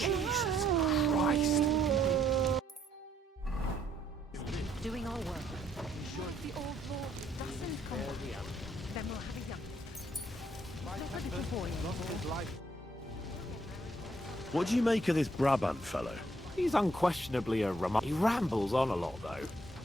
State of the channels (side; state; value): both; normal; correlation 0.69